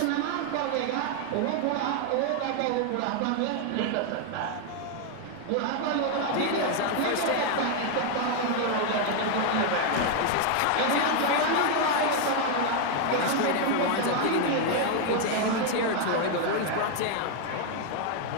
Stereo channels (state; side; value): different; both; correlation 0.01